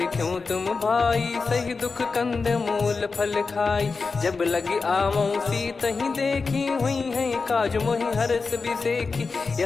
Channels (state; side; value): quieter; right; 4.5 dB